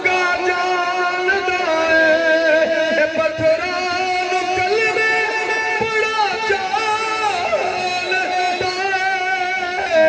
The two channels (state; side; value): identical; both; correlation 1.00